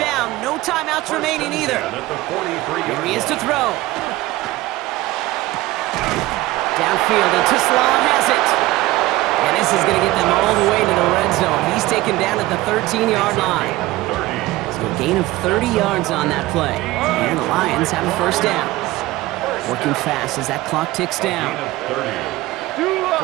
No timeouts remaining either. Here he is to throw. Downfield, and Tislam has it. And this is going to get them all the way to the red zone. He's taken down at the 13-yard line. So a gain of 30 yards on that play. And the Lions have a first down. Working fast as that clock ticks down.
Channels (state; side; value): quieter; left; 18.2 dB